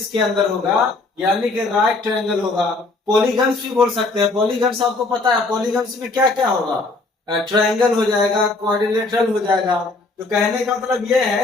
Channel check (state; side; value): quieter; right; 3.4 dB